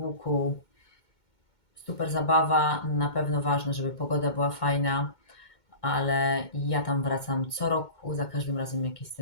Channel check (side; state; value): right; late; 2.2 ms